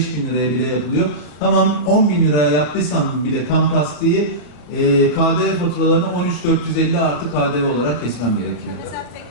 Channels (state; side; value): late; right; 33 ms